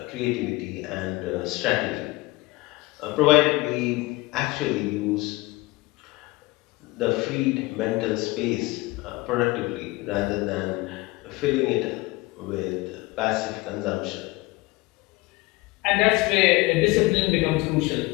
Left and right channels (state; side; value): quieter; right; 21.9 dB